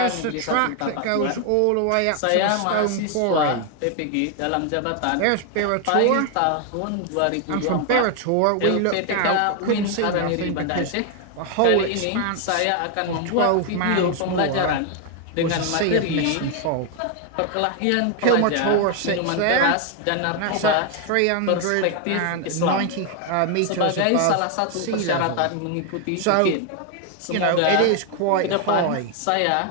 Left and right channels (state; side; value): different; both; correlation 0.01